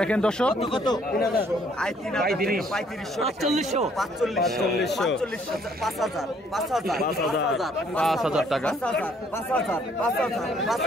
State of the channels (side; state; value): both; normal; correlation 0.64